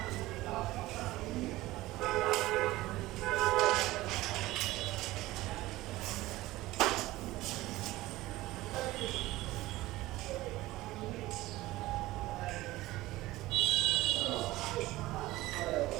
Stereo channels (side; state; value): left; quieter; 17.9 dB